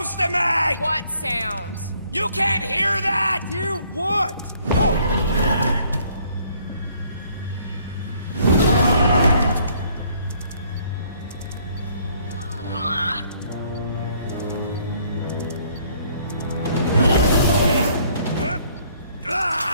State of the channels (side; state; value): both; inverted; correlation -0.63